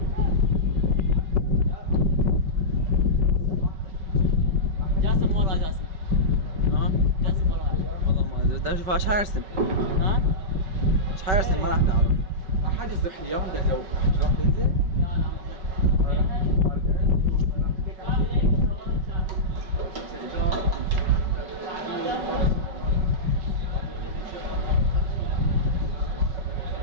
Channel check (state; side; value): late; left; 5.3 ms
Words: جاسم ورا جاسم جاسم ورا والله ما ادري بدي اشوف ايش حيرسم ايش حيرسم ما راح نعرف. احد يصح اليوم ده جو تروح تنزل؟